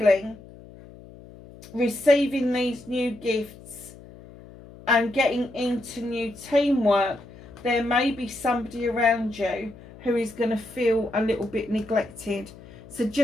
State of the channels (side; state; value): left; noise; hum, 19 dB below the sound